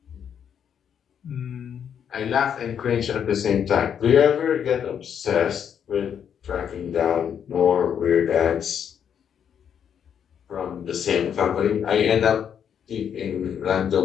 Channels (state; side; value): quieter; right; 8.3 dB